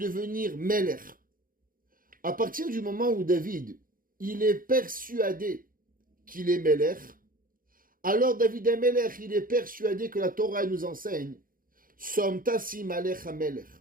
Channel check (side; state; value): left; late; 0.41 ms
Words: Melech. À partir du moment où David, il est persuadé qu'il est Melech, alors David Amelech, il est persuadé que la Torah nous enseigne Som tasim alech hamelech,